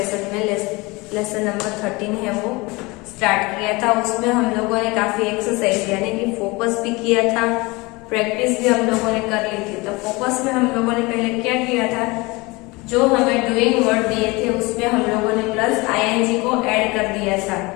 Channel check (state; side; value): quieter; right; 24.2 dB